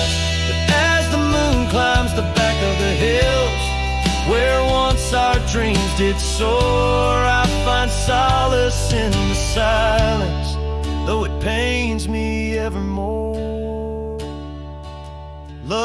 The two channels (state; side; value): identical; both; correlation 1.00